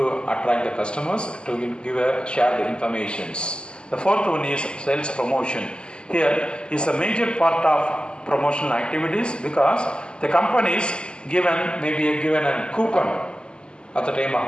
attract the customers, to share the informations. The fourth one is sales promotion. Here is a major part of promotional activities, because the companies may be given a coupon at the time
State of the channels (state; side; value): late; right; 0.049 ms